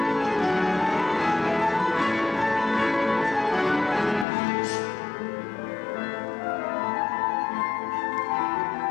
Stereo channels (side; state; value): right; drops out; at 4.2 s